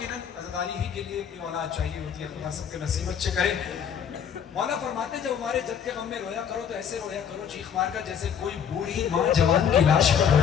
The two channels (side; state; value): right; quieter; 8.0 dB